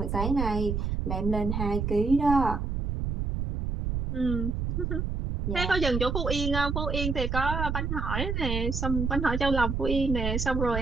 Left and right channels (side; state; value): right; noise; rumble, 2 dB below the sound